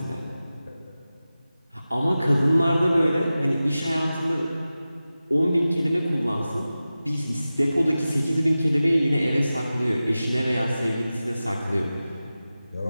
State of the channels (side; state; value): both; inverted; correlation -0.95